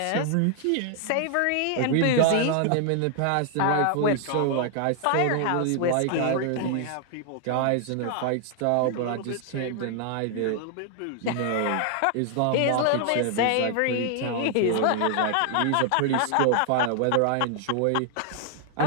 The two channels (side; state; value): both; different; correlation 0.00